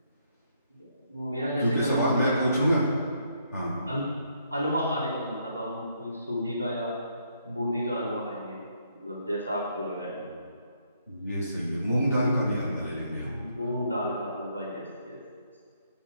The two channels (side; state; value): both; inverted; correlation -0.72